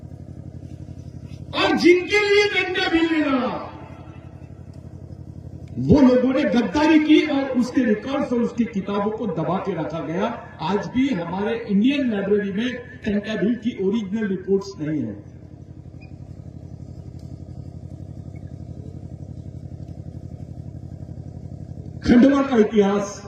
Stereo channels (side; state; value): both; identical; correlation 1.00